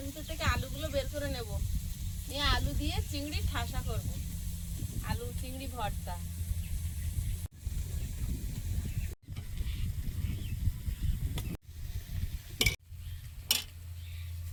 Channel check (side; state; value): both; identical; correlation 1.00